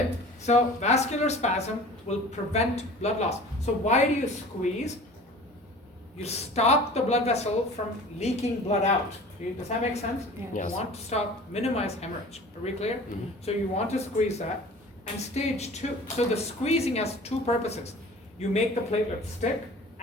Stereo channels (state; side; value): normal; both; correlation 0.42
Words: so vascular spasm will prevent blood loss. So why do you squeeze? You stop the blood vessel from leaking blood out. Does that make sense? Yes. You want to minimize hemorrhage. Are we clear? So you want to squeeze that. And stage 2, so the squeezing has 2 purposes. You make the platelets stick